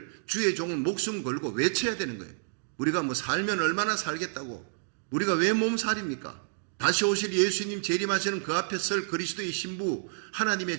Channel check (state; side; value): silent; left; digital silence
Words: 주의 종은 목숨 걸고 외쳐야 되는 거예요. 우리가 뭐 살면 얼마나 살겠다고, 우리가 왜 몸살입니까? 다시 오실 예수님 재림하시는 그 앞에 설 그리스도의 신부